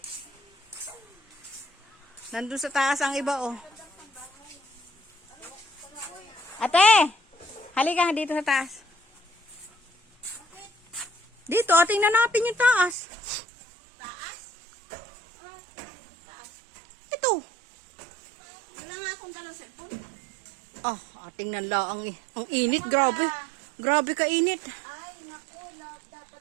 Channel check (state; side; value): drops out; left; at 13.0 s